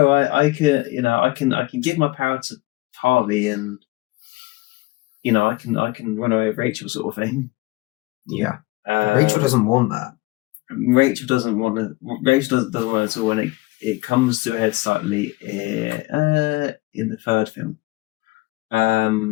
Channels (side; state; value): right; quieter; 20.8 dB